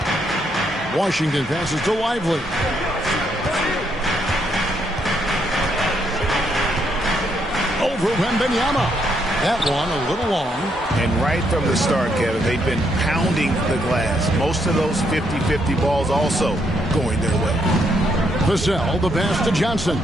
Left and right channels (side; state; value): both; normal; correlation 0.75